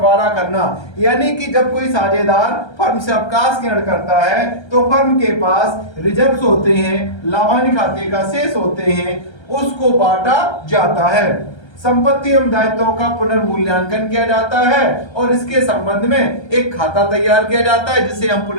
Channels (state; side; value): late; right; 1.3 ms